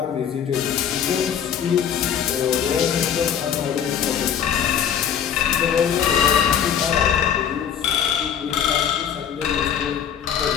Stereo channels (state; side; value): quieter; right; 8.6 dB